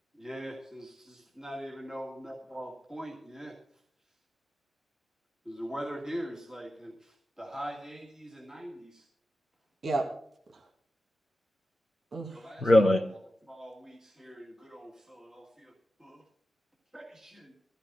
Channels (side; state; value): both; normal; correlation 0.92